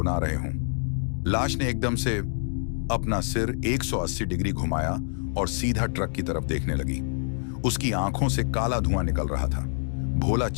रहे हों। लाश ने एकदम से अपना सिर 180 डिग्री घुमाया और सीधा ट्रक की तरफ देखने लगी। उसकी आंखों से काला धुआं निकल रहा था। भोला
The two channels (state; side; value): silent; right; digital silence